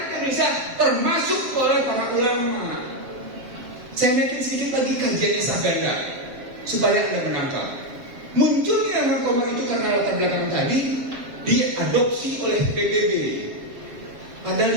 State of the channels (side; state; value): left; late; 7.5 ms